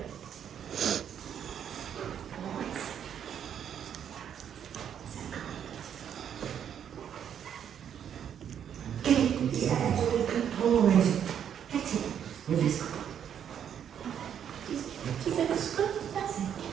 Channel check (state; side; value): quieter; left; 8.9 dB